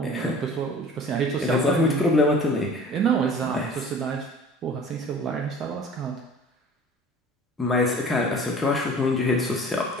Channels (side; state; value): both; normal; correlation 0.44